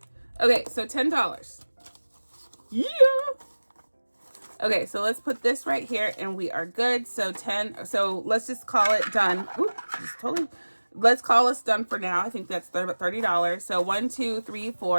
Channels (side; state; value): both; inverted; correlation -1.00